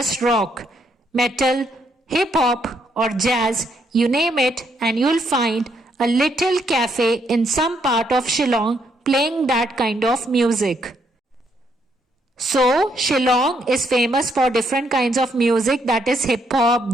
rock, metal, hip-hop or jazz, you name it and you'll find a little cafe in some part of Shillong playing that kind of music. So, Shillong is famous for different kinds of music, that is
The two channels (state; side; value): normal; both; correlation 0.73